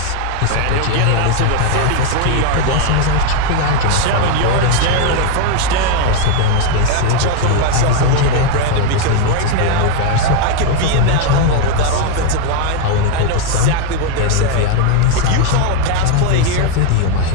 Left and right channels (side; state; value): both; different; correlation 0.01